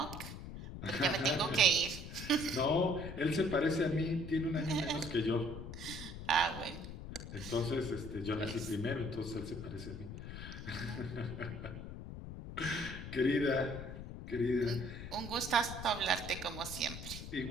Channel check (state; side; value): noise; left; rumble, 9 dB below the sound